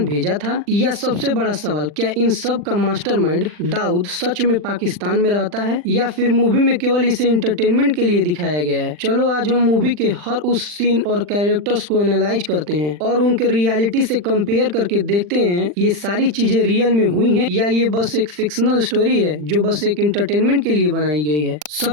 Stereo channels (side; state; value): left; late; 40 ms